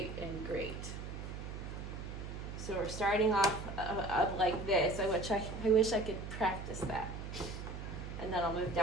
and great. So we're starting off up like this. I wish I could practice that. And then I'll move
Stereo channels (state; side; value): noise; right; hum, 8 dB below the sound